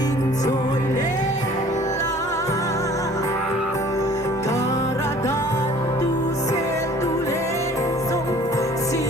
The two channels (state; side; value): normal; both; correlation 0.51